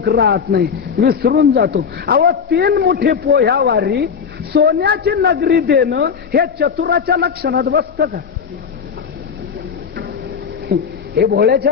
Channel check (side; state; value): right; quieter; 6.5 dB